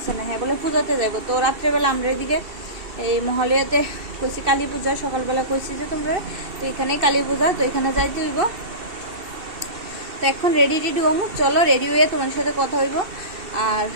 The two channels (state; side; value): late; left; 2.7 ms